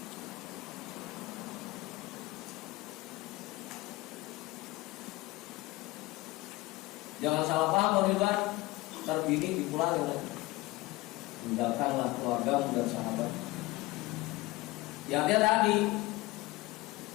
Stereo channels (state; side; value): quieter; right; 20.1 dB